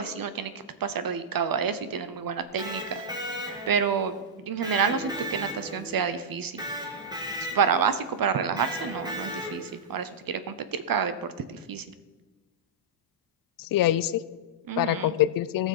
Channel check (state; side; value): normal; both; correlation -0.11